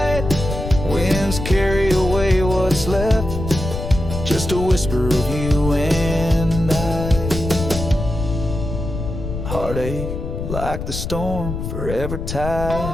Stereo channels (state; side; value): noise; left; rumble, 5 dB below the sound